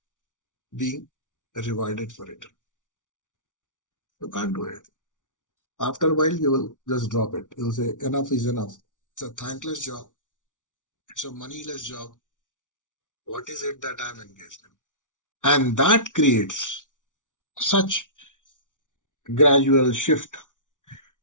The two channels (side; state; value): right; late; 0.87 ms